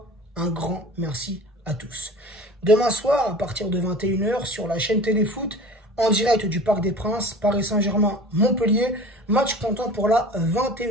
un grand merci à tous. Demain soir, à partir de 21 h, sur la chaîne Téléfoot, en direct du Parc des Princes, Paris Saint-Germain-Montpellier, match comptant pour la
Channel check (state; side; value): normal; both; correlation 0.40